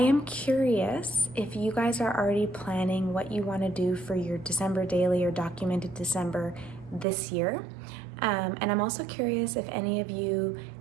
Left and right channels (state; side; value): drops out; left; at 7.1 s